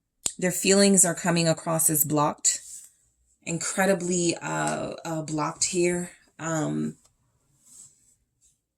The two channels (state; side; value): identical; both; correlation 1.00